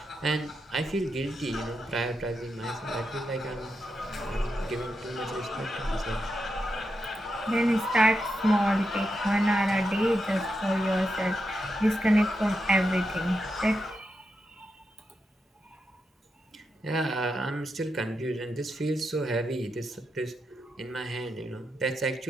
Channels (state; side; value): normal; both; correlation 0.86